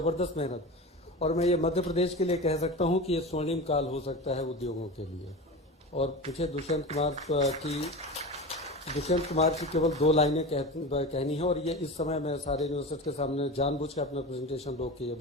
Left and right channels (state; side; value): normal; both; correlation 0.28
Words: मेहनत, और मैं ये मध्य प्रदेश के लिए कह सकता हूं कि ये स्वर्णिम काल हो सकता है उद्योगों के लिए। और मुझे दुष्यंत कुमार की केवल 2 लाइनें कहनी है, और ये इस समय मैं सारे इन्वेस्टर्स के सामने जानबूझ के अपना प्रेजेंटेशन रोक के ये